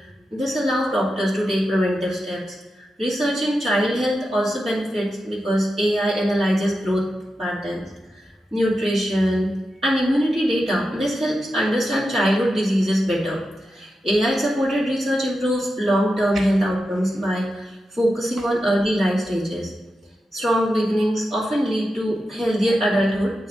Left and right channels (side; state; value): both; normal; correlation 0.89